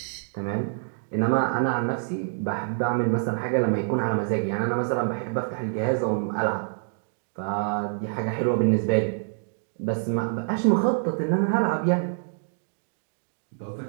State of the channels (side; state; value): left; silent; digital silence